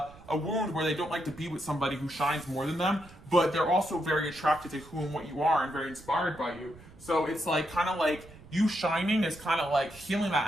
wound where they don't like to be with somebody who shines more than them, but they're also very attracted to who and what you are and very inspired by you. So it's like kind of like you shining is kind of like healing that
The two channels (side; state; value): right; noise; rumble, 21 dB below the sound